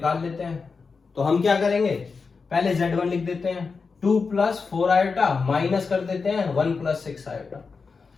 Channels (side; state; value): right; quieter; 4.8 dB